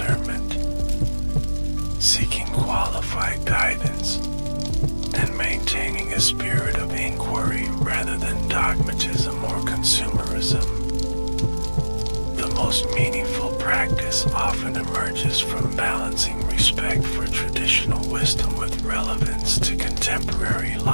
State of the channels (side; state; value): both; inverted; correlation -1.00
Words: seeking qualified guidance, and maintaining a spirit of inquiry rather than dogmatism or consumerism. The most meaningful practice often emerges from balancing respect for traditional wisdom with relevance to contemporary